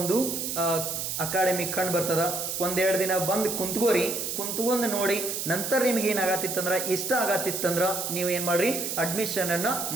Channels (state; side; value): noise; right; hiss, 3 dB below the sound